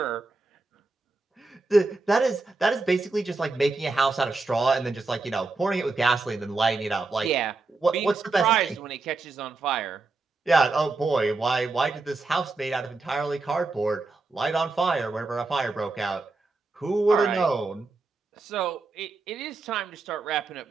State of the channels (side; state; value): left; quieter; 3.6 dB